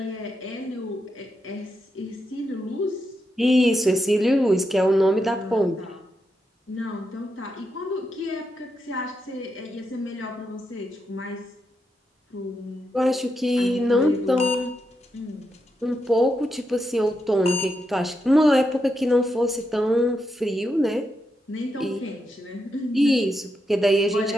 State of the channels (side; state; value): both; normal; correlation 0.84